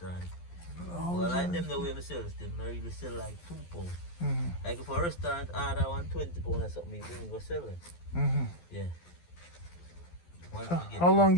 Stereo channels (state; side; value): late; right; 12 ms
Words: Well, like them the way we sell them, I really sell like £2. Like if a restaurant order 120 pounds or something, we bring go sell them. Yeah. Once we get How long